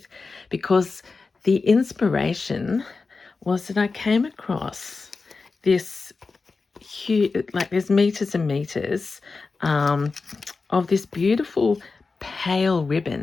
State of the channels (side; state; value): right; quieter; 4.2 dB